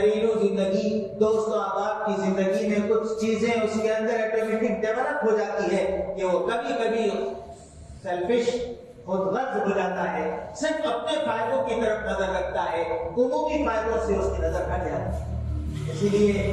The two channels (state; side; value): identical; both; correlation 1.00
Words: زندگی، دوست و احباب کی زندگی میں کچھ چیزیں اس کے اندر آٹومیٹک ڈیولپ ہو جاتی ہے کہ وہ کبھی کبھی سیلفش، خود غرض ہو جاتا ہے، صرف اپنے فائدوں کی طرف نظر رکھتا ہے، عمومی فائدوں سے اس کی نظر ہٹ جاتی ہے۔ اسی